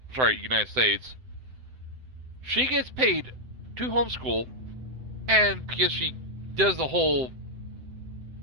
United States, she gets paid to homeschool, and because she does the whole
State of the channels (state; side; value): late; left; 7.8 ms